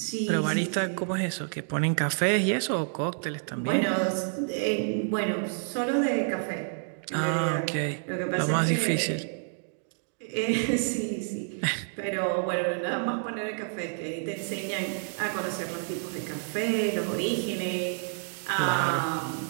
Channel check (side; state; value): left; silent; 58 dB below the other